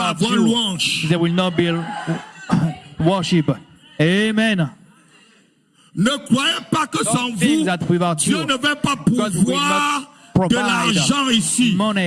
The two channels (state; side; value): identical; both; correlation 1.00